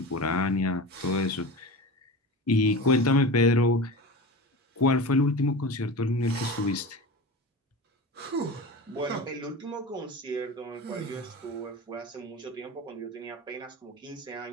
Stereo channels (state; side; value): normal; both; correlation 0.29